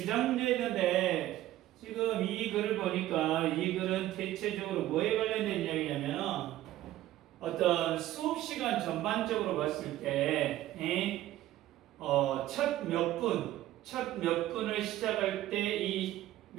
문제 있는데 지금 이 글을 보니까 이 글은 대체적으로 뭐에 관련된 이야기냐면 어떤 수업 시간 전반적으로 봤을 때 첫 몇 분을 시작할 때 이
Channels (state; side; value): quieter; left; 14.5 dB